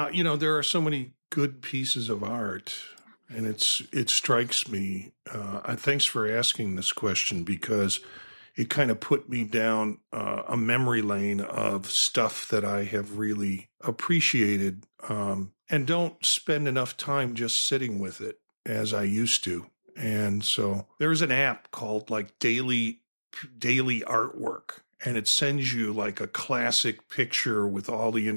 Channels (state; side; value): inverted; both; correlation -1.00